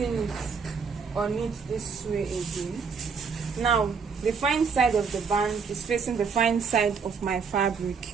it on it this way again. Now the fine side of the band is facing the fine side of my fabric.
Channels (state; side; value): quieter; left; 5.7 dB